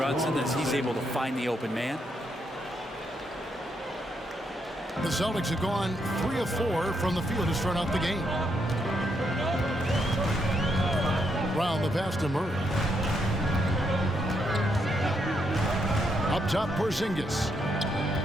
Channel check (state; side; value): normal; both; correlation 0.78